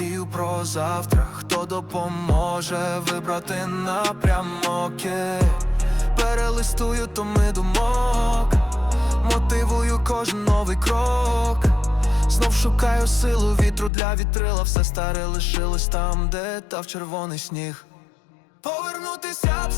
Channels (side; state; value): right; drops out; at 13.9 s